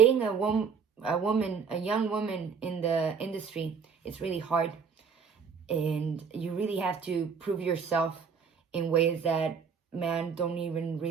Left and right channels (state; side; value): quieter; left; 6.3 dB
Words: a young woman in the industry, it's really hard. And you really have to prove yourself in ways that men don't even